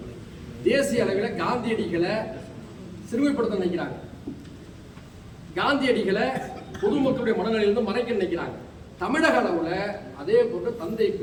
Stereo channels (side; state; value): both; identical; correlation 1.00